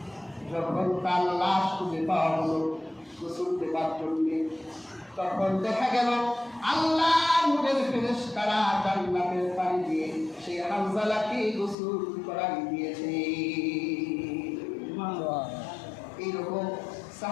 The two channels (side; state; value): right; drops out; at 11.8 s